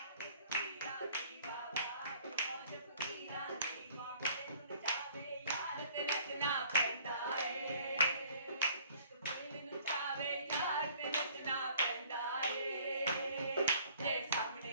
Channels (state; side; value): inverted; both; correlation -0.55